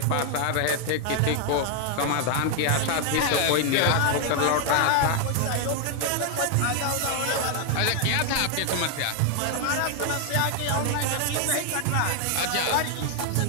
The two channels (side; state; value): both; different; correlation 0.00